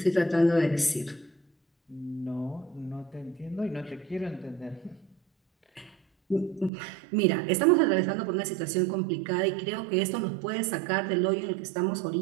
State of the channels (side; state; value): left; drops out; at 6.7 s